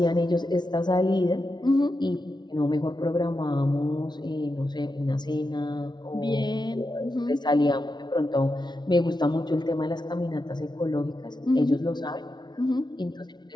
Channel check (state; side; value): late; right; 0.20 ms